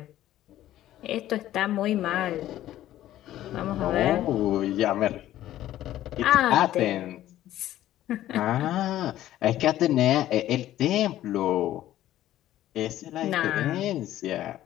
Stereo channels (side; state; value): right; quieter; 13.5 dB